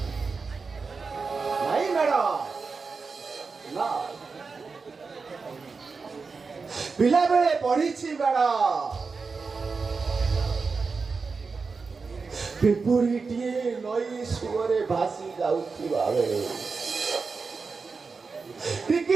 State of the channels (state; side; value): quieter; left; 4.7 dB